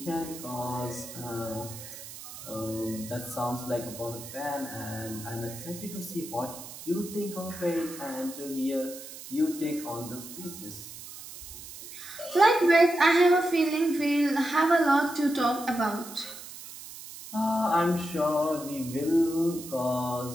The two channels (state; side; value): noise; right; hiss, 13 dB below the sound